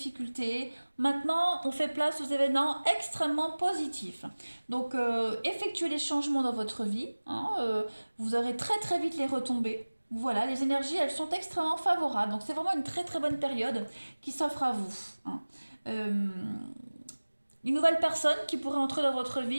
Maintenant, on fait place aux événements extrêmement positifs. Donc, effectuez les changements dans votre vie. Hein, vous aurez très très vite les retombées. Voilà, les énergies, elles sont extrêmement favorables. Donc, c'est vraiment une très très bonne période qui s'offre à vous. Hein. Une nouvelle personne qui pourrait entrer dans votre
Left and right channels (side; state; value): both; inverted; correlation -1.00